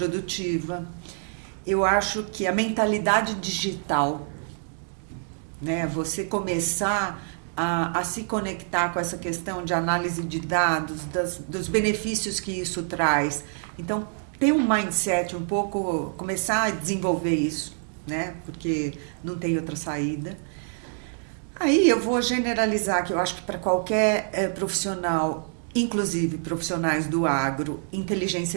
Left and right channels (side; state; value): left; silent; 61 dB below the other